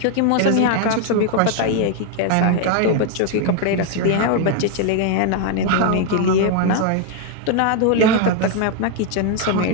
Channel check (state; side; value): different; both; correlation 0.01